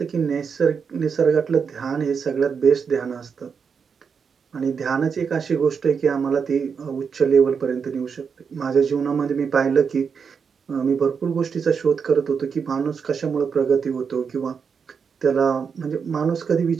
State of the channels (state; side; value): quieter; left; 6.2 dB